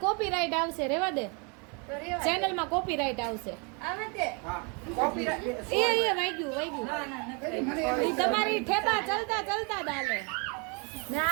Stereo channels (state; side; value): quieter; left; 33.5 dB